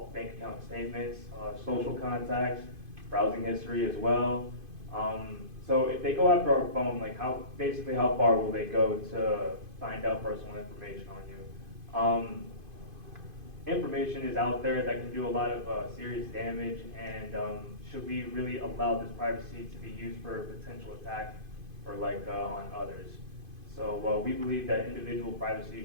bank account statements, social contacts, browsing history as well. So if they go after our phone, like basically how far will they go to find out personal information on you? Information is out there that can do a lot of serious damage, and should we really allow this privacy to be used for a potential attack or like on others? So we believe that individual privacy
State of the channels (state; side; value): late; left; 2.5 ms